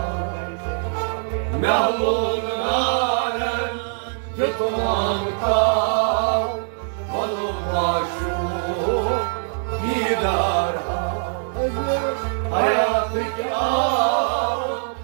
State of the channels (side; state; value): left; silent; digital silence